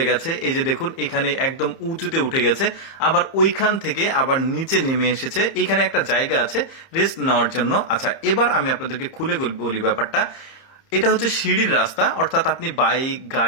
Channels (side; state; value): right; late; 30 ms